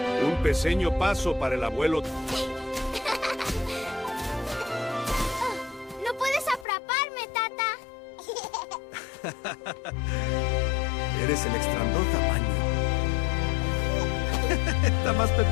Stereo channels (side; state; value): right; drops out; at 6.7 s